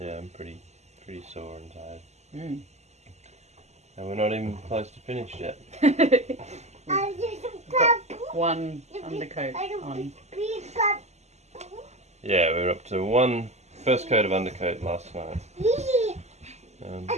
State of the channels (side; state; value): left; late; 0.33 ms